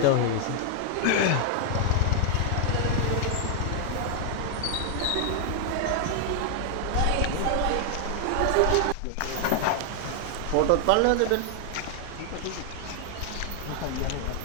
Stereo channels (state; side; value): different; both; correlation 0.00